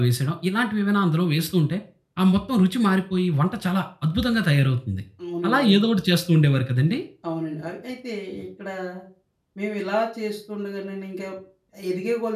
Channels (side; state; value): both; identical; correlation 1.00